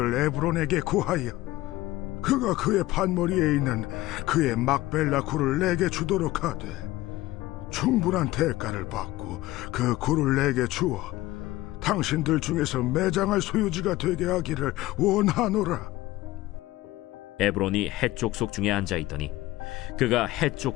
에브론에게 구하여 그가 그의 판머리에 있는 그의 막벨라 굴을 내게 주도록 하되 충분한 대가를 받고 그 굴을 내게 주어 당신들 중에서 매장할 소유지가 되게 하기를 원하노라. 에브론이 헷 족속 중에 앉아있더니 그가 헷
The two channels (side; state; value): right; quieter; 17.5 dB